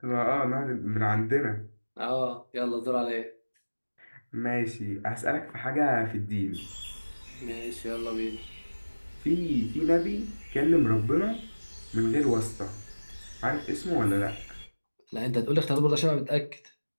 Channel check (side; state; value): both; inverted; correlation -1.00